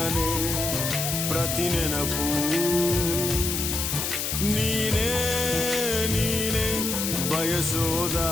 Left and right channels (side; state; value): left; noise; hiss, 1 dB below the sound